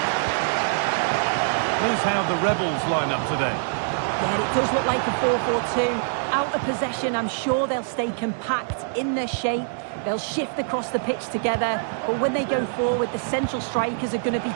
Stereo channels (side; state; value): left; silent; digital silence